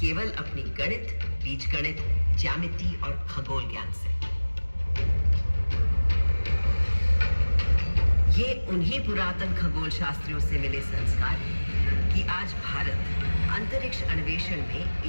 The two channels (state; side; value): inverted; both; correlation -1.00